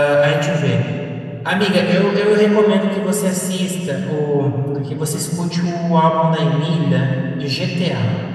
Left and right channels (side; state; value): both; identical; correlation 1.00